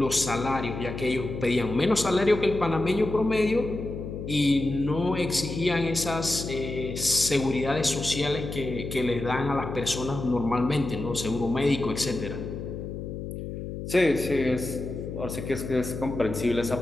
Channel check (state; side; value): noise; left; hum, 7 dB below the sound